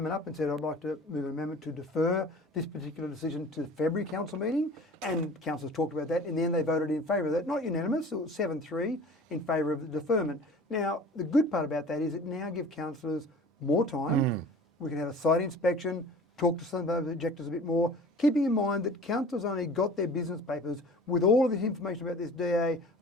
up and said, I'd like to move an amendment to defer this particular decision to the February council meeting, and councillors talked about that. In the end, they voted in favour of that. Not unanimous, it was 7-3 in favour of the deferment. Now, the good part about that is it now gives councillors more time. We can have a site inspection, talk to some of those objectors a bit more, keeping in mind that councillors only got their business papers with all of this information about this DA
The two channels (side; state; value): both; normal; correlation 0.43